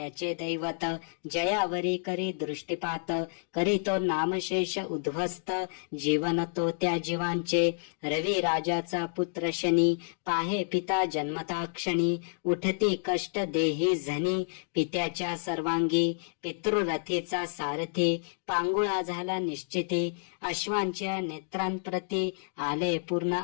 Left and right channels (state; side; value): silent; right; digital silence